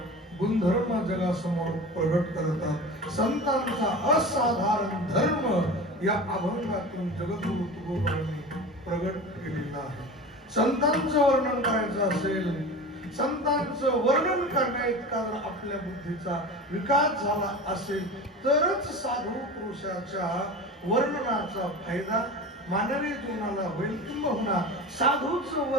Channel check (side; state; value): both; normal; correlation 0.32